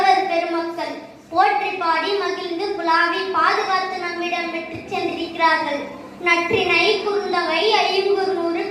பெருமக்கள் போற்றி பாடி மகிழ்ந்து புலாவி பாதுகாத்து நம்மிடம் பெற்று சென்றிருக்கிறார்கள். நற்றினை குறுந்தொகை ஐங்குறுநூறு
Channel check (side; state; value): both; identical; correlation 1.00